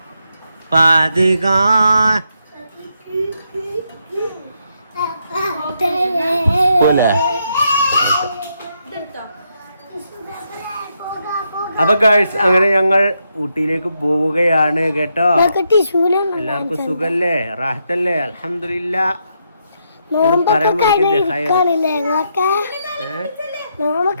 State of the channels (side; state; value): both; inverted; correlation -0.80